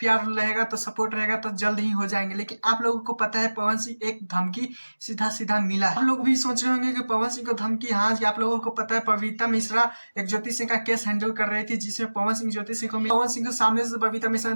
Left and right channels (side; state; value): both; inverted; correlation -1.00